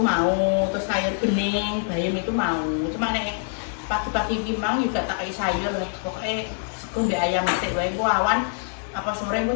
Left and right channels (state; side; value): silent; right; 62 dB below the other